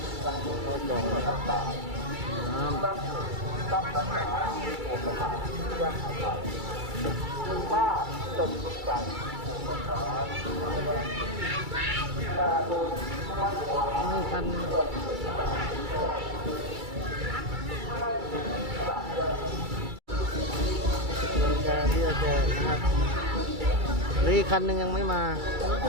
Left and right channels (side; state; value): left; late; 2.3 ms